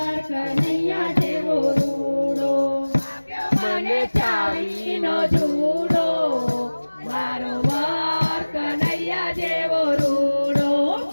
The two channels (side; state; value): both; inverted; correlation -1.00